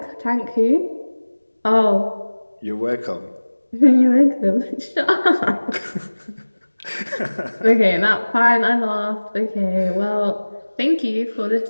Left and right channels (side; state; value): both; inverted; correlation -1.00